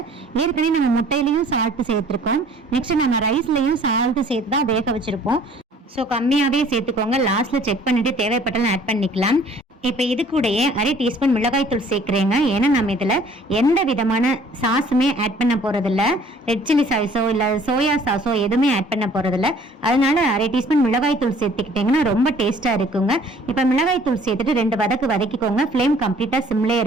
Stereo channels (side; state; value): both; normal; correlation 0.55